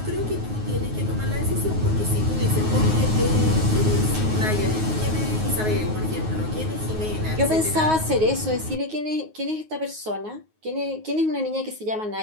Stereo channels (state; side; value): late; left; 9.4 ms